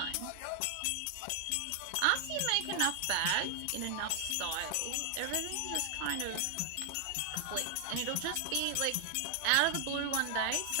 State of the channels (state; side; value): different; both; correlation 0.00